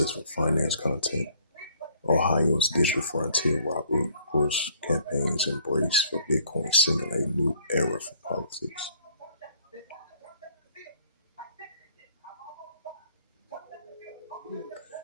for finance content. Ohio's digital frontier Robert Bush campaigns embrace for Bitcoin simulate new era for politics.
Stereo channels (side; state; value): both; inverted; correlation -0.60